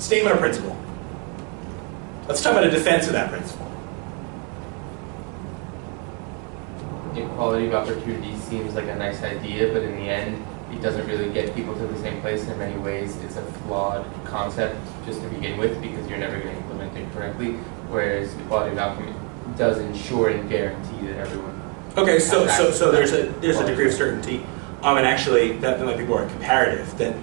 of principle. Let's talk about a defense of that principle. Equality of opportunity seems like a nice idea, but in the end, it doesn't really get people to the same place. In many ways, it's a flawed concept just to begin with because you're never going to implement it correctly. Whereas equality of outcome does ensure and guarantee that everyone. Okay, so there's a degree of certainty, and actually that might be more comparative.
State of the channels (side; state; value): left; quieter; 36.0 dB